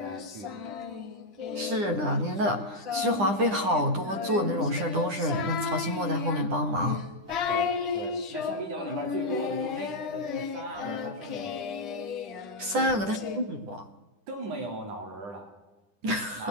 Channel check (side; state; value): left; late; 9.9 ms